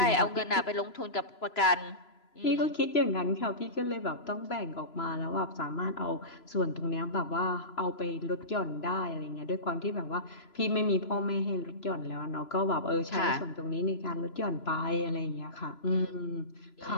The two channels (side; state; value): right; late; 3.0 ms